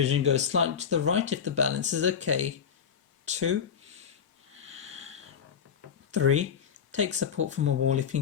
goes slightly to the right if the balance is okay. 2, 3. Take support from a wall if you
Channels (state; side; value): quieter; right; 7.4 dB